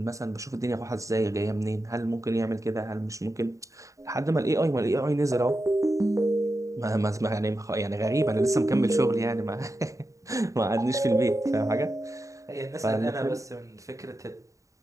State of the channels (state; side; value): late; left; 0.16 ms